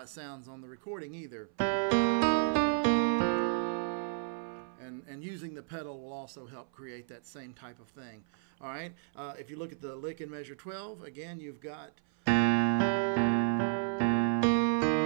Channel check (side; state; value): left; silent; 56 dB below the other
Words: sounds on the recording either. And using the pedal will also help create that same type of thing. Alright, if you look at the lick in measure 12, again you've got...